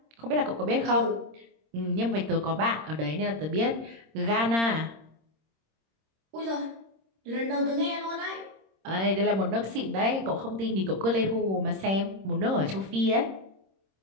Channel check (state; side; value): late; left; 26 ms